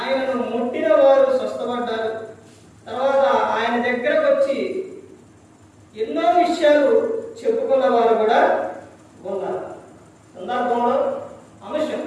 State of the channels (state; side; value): identical; both; correlation 1.00